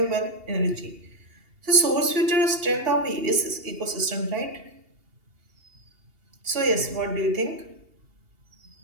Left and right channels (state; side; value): late; left; 2.8 ms